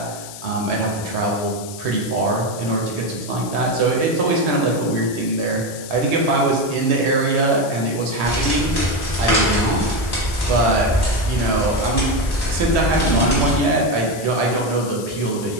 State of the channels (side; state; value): left; noise; hiss, 13 dB below the sound